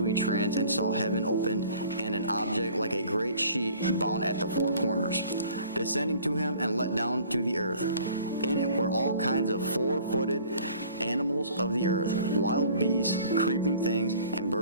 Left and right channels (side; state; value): both; inverted; correlation -0.51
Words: a trance and saw heaven opened and an object like a great sheet bound at the four corners, descending to him and let down to the earth. In it were all kinds of four-footed animals of the earth, wild beasts, creeping things, and